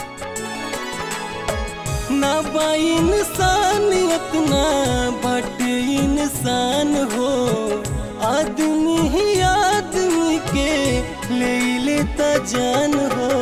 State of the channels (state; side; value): identical; both; correlation 1.00